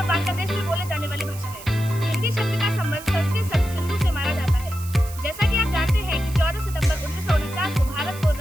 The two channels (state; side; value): noise; right; hiss, 16 dB below the sound